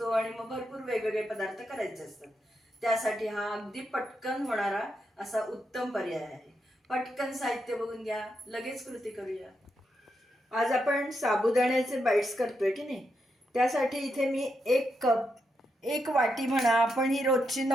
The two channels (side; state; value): both; normal; correlation 0.83